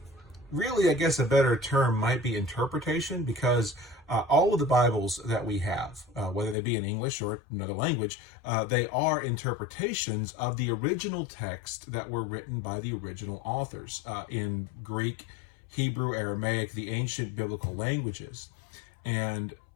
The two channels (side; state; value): right; drops out; at 6.6 s